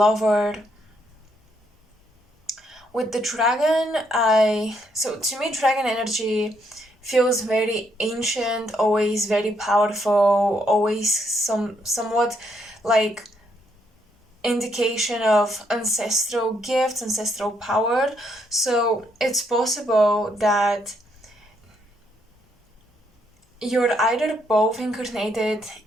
With the dragon, so to me dragon energy feels very ancient, always very powerful, always somewhat like indication of ancestral gifts, ancestral power. So it's possible that you're either both incarnated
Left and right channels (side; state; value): both; normal; correlation 0.74